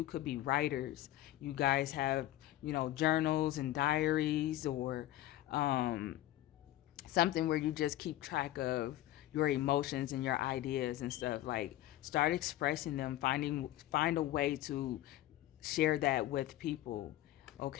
could be writers. You guys have, journals and diaries, or something where you just keep track of your emotions and your ideas and stuff. Like, start expressing them, find a way to share that with people,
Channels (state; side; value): quieter; right; 14.7 dB